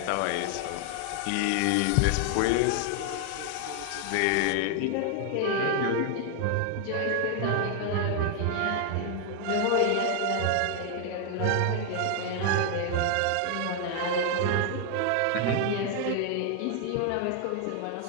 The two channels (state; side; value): different; both; correlation 0.00